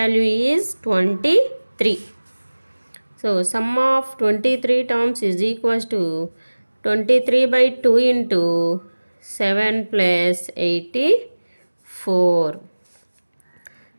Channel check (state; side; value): inverted; both; correlation -1.00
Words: is 23. So sum of 23 terms is equals to 23/2 into 7 plus 84.